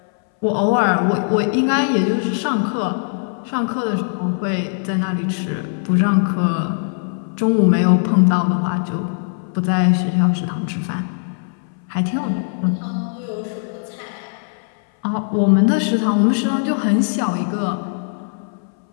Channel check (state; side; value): silent; right; 65 dB below the other